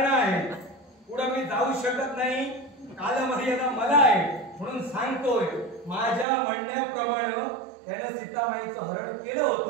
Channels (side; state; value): left; drops out; at 6.2 s